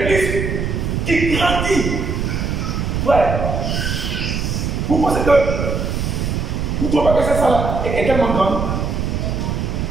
qui grandit. Frère, vous pensez que vous ne trouvez pas que cette salle est tellement grande?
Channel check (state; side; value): noise; right; rumble, 1 dB below the sound